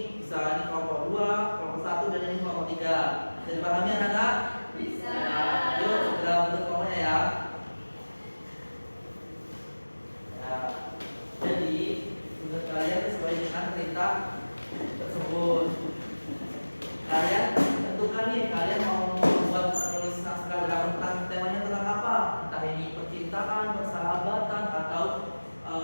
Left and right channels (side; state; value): both; inverted; correlation -1.00